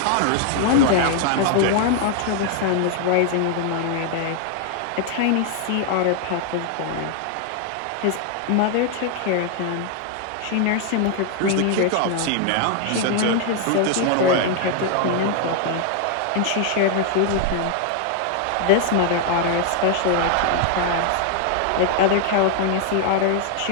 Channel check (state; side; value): different; both; correlation 0.00